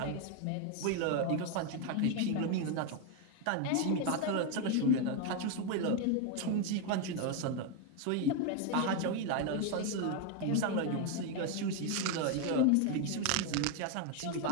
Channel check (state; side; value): different; both; correlation 0.01